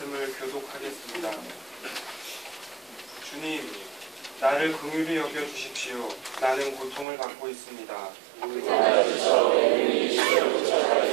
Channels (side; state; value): left; drops out; at 7.1 s